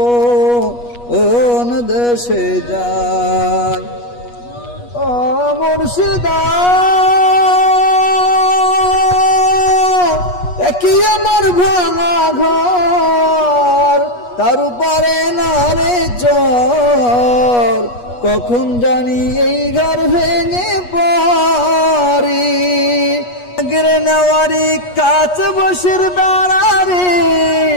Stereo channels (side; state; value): right; late; 8.3 ms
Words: দেশে যায় ও মুর্শিদা একই আমার ভাঙা ঘর তার উপরে না রে চর কখন জানি এই ঘর ভেঙে পড়ি গিরে নেওয়ারি কাছ বসের দাঁড়ারে